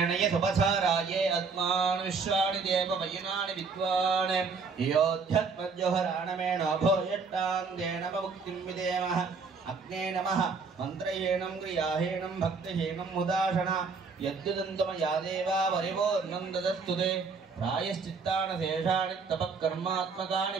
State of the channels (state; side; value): quieter; left; 4.8 dB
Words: सुपथाराये अस्मान् विश्वाणि देव वयनानि विद्वान् योध्यत्मज्जोहराणमेण भोयट्टाङ्गेन मुक्तिं विदेमः अग्ने नमः मन्त्रहीनं क्रियाहीनं भक्तिहीनं मुदाशना यद्युदन्तमया देवा वरिवोर्नं ददस्तु ते प्रायश्चित्तानि शेषाणि तपःकर्मात्मकानि